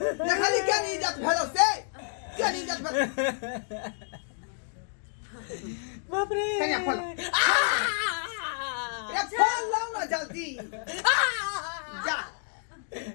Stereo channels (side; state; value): right; silent; 58 dB below the other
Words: के नहीं इज्जत भेल से के नहीं इज्जत भेल बाप रे कन्या फोन रे फोन लाओ ना जल्दी जा